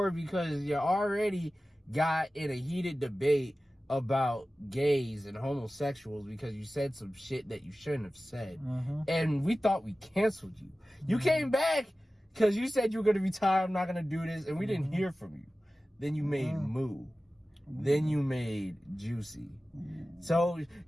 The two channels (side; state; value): both; normal; correlation 0.96